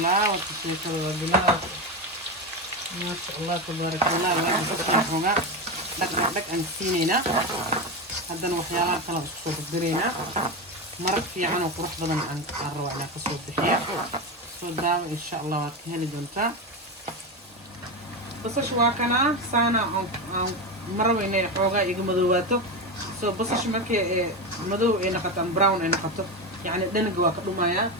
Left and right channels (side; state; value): both; normal; correlation 0.16